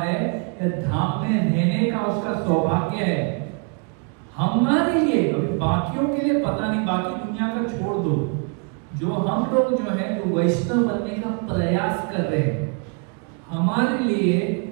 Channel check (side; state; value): left; quieter; 37.2 dB